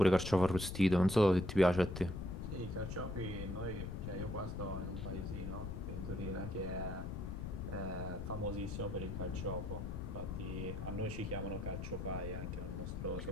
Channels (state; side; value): noise; left; rumble, 5 dB below the sound